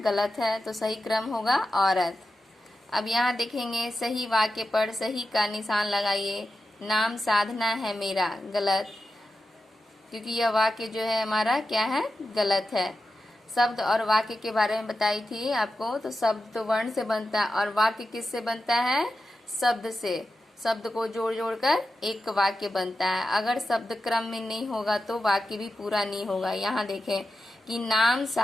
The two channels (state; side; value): normal; both; correlation 0.91